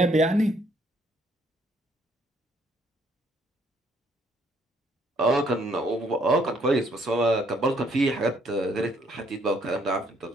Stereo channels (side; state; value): both; normal; correlation 0.67